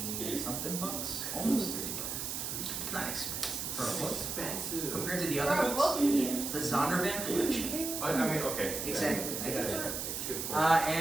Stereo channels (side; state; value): right; noise; hiss, 3 dB below the sound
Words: 20 something bucks, almost 30 bucks. Not expensive for a book. Expensive. Compared to the other books, the Zondervan collection. I mean, okay. Exactly. I got it. It's a good point.